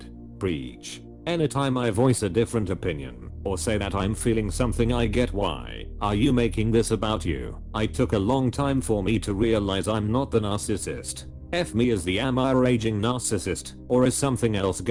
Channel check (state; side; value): identical; both; correlation 1.00